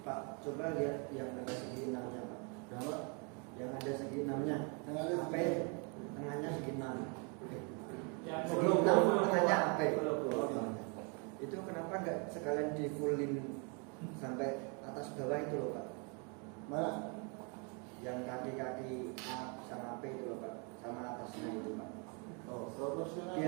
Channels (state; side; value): quieter; left; 35.3 dB